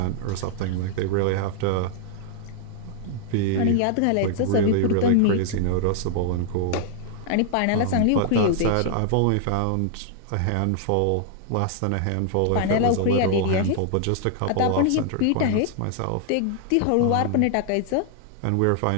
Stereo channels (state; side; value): different; both; correlation 0.00